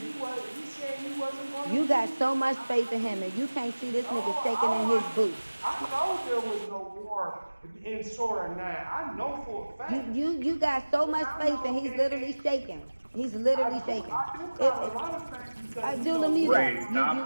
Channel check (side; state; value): both; inverted; correlation -1.00